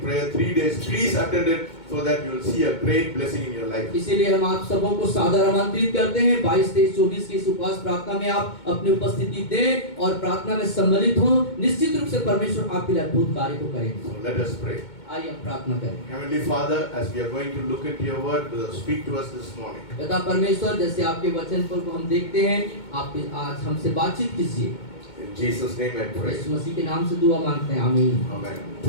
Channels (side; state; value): right; late; 2.2 ms